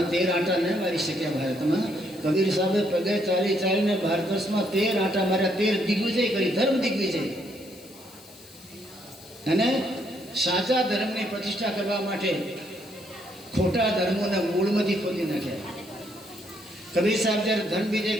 13 આંટા ન મારી શક્યા ભારતમાં. કબીર સાહેબે પગે ચાલી ચાલીને ભારત વર્ષમાં 13 આંટા માર્યા, 13 દિગ્વિજય કરી, ધર્મ દિગ્વિજય. અને સાચા ધર્મની પ્રતિષ્ઠા કરવા માટે ખોટા ધર્મોના મૂળમાંથી ખોદી નાખ્યા. કબીર સાહેબ જ્યારે ધર્મ વિજય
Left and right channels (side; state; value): left; noise; hiss, 22 dB below the sound